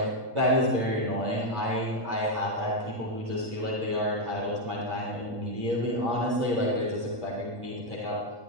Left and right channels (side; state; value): left; late; 8.5 ms